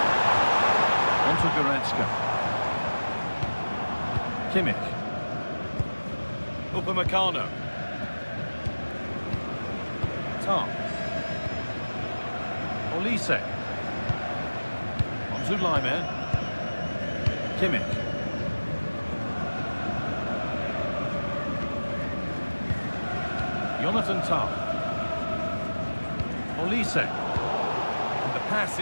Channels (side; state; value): both; inverted; correlation -1.00